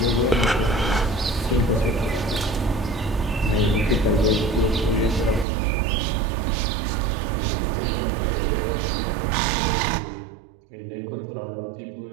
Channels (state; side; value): drops out; left; at 5.5 s